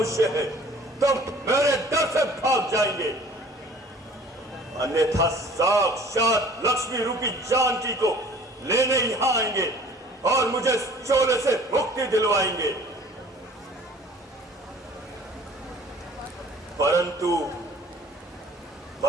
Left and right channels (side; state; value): both; normal; correlation 0.50